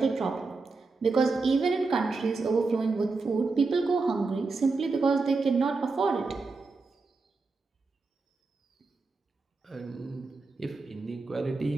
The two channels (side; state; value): left; quieter; 4.0 dB